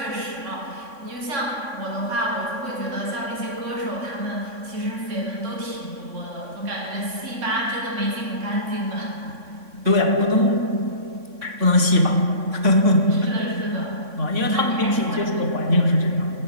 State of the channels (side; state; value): left; late; 3.6 ms